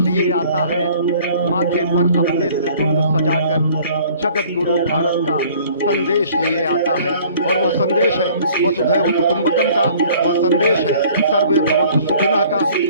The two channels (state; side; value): inverted; both; correlation -0.53